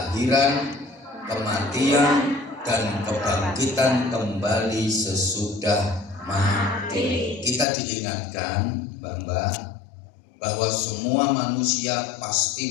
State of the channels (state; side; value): drops out; right; at 7.7 s